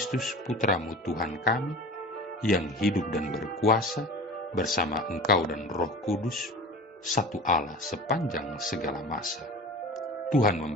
Putramu Tuhan kami, yang hidup dan berkuasa bersama Engkau dan Roh Kudus, satu Allah sepanjang segala masa. Tuhan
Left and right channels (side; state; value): both; normal; correlation 0.36